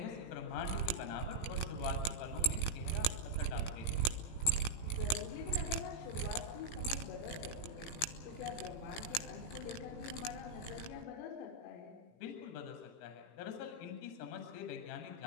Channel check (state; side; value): late; right; 17 ms